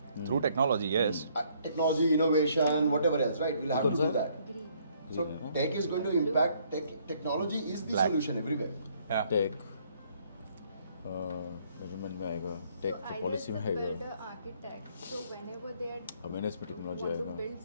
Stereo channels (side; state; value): both; inverted; correlation -0.66